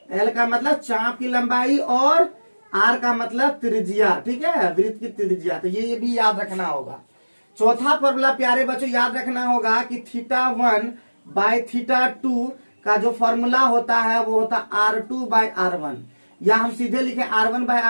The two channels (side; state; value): both; inverted; correlation -1.00